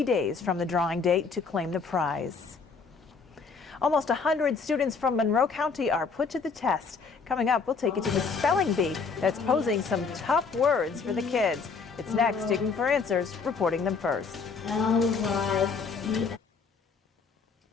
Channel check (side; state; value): right; quieter; 5.1 dB